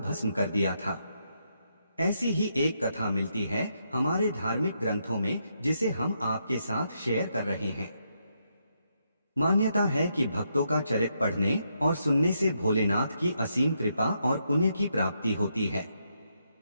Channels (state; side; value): inverted; both; correlation -0.79